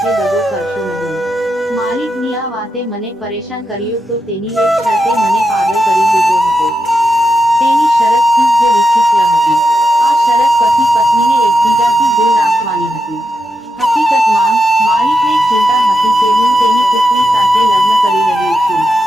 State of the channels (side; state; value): both; normal; correlation 0.87